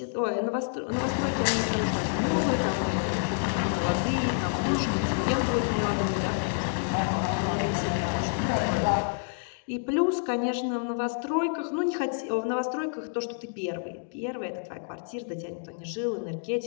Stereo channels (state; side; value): silent; right; digital silence